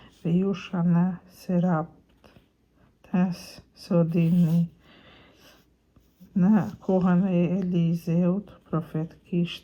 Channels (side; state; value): both; identical; correlation 1.00